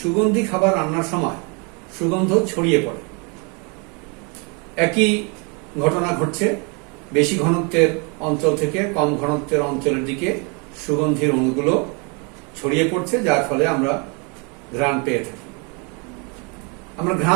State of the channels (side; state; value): left; quieter; 32.9 dB